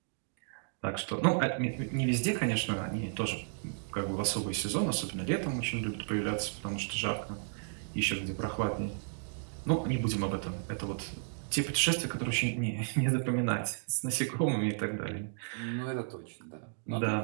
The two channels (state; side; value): silent; left; digital silence